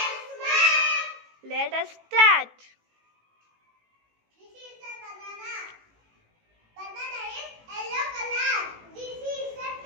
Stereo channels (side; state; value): left; late; 18 ms